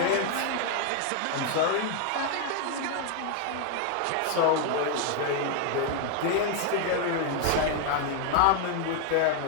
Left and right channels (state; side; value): different; both; correlation 0.00